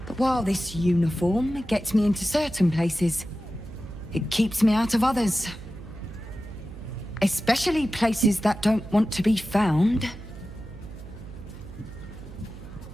But while this uniform gets me into certain places, it keeps me out of others. Especially places that don't want to be found.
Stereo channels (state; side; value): noise; right; hum, 14 dB below the sound